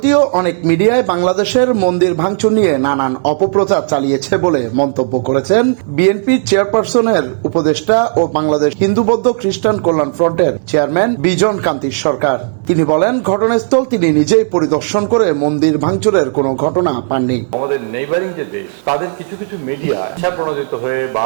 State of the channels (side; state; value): left; silent; digital silence